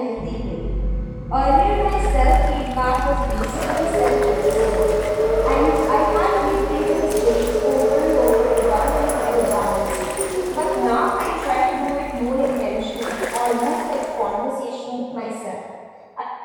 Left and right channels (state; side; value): identical; both; correlation 1.00